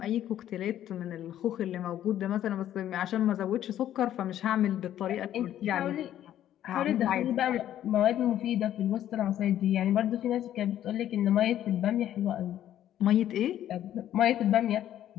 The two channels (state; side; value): quieter; right; 11.7 dB